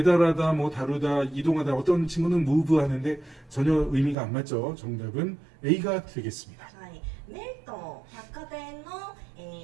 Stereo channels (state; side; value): drops out; left; at 4.2 s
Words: 뭐 다루다, 이동하다. 어떤 친구는 move 하는데 전혀 의미가 안 맞죠. 정답은 A가 되겠습니다. はい、メルトン百貨店の、